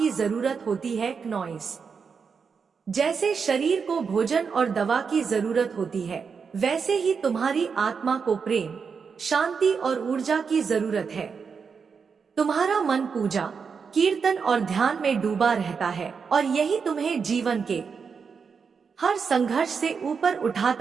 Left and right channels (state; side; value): quieter; left; 5.8 dB